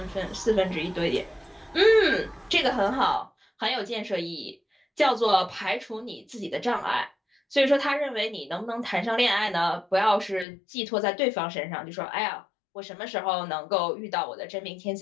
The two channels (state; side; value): drops out; right; at 10.5 s